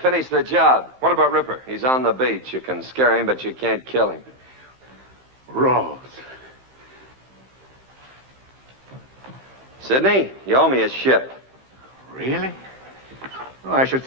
the job. What about Ripper? He's on the beach. You can scare him, but you can't kill him. Ralls. Sidney, you owe me a ship. Really? Well, I should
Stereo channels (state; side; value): late; left; 15 ms